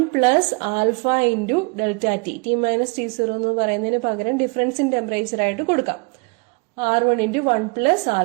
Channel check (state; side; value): quieter; left; 30.0 dB